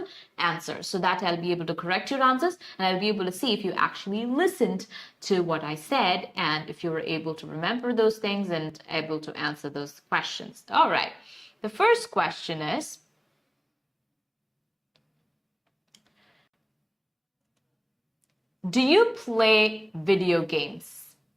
answer so that I'll be able to correct your answers and I'll be able to see if you actually listened to what I said and if you were able to remember those things and able to answer those questions. All right, the first question is, do you play video games?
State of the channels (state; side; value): identical; both; correlation 1.00